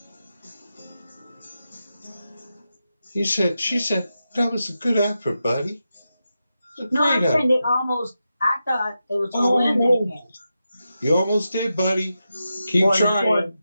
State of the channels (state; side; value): inverted; both; correlation -0.89